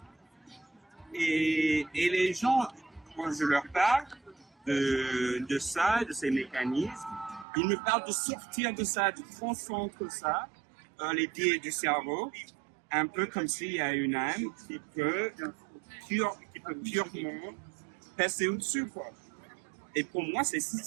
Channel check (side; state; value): left; drops out; at 7.5 s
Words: Et les gens, quand je leur parle de ça, de ces mécanismes, ils me parlent de sortir de ça, de transcendre ça, les biais du cerveau, un peu comme s'il y a une âme qui peut purement passer au-dessus, quoi. Et pour moi,